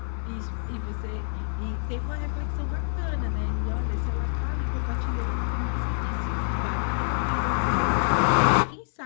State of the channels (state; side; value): silent; right; 60 dB below the other